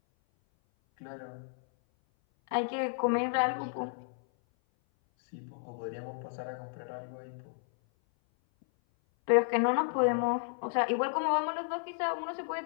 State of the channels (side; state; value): right; silent; 56 dB below the other